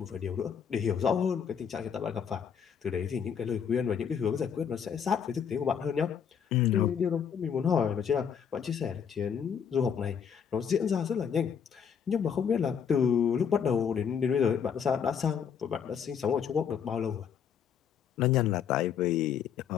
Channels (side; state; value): right; quieter; 7.5 dB